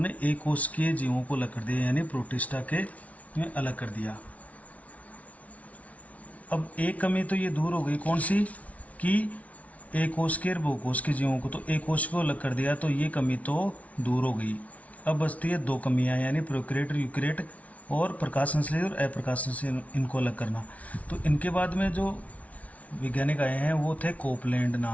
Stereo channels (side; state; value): right; late; 0.068 ms